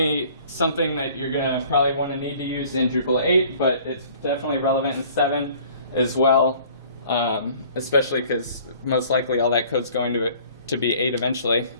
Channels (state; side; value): inverted; both; correlation -0.53